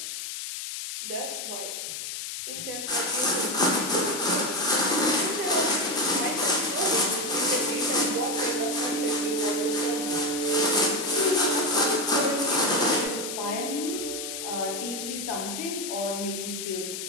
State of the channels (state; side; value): noise; left; hiss, 6 dB below the sound